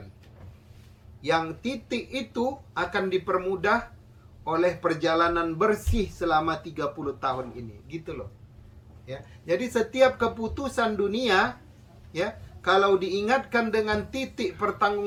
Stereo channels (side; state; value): both; identical; correlation 1.00